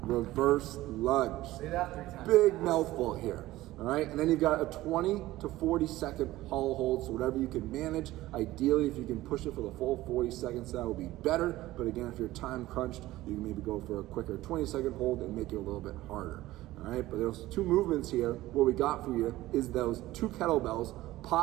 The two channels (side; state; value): left; quieter; 16.7 dB